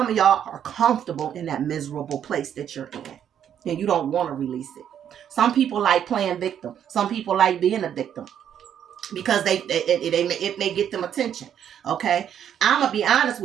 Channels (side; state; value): left; quieter; 9.4 dB